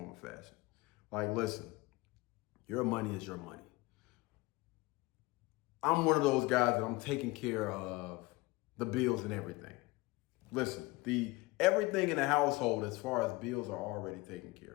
or fashion. Like, listen, your money is your money. I'm one of those guys that I'm taking care of the bills and everything. Listen, everything in the household as far as bills are already taken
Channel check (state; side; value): quieter; right; 22.1 dB